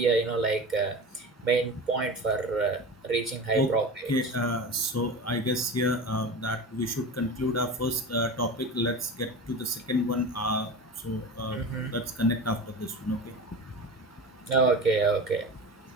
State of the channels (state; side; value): normal; both; correlation 0.30